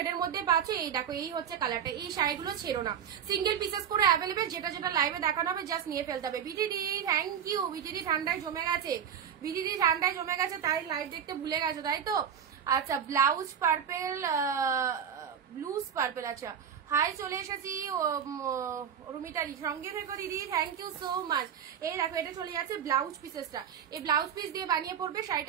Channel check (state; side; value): quieter; left; 8.4 dB